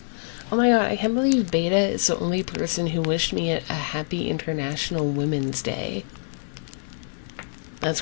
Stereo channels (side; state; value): right; silent; digital silence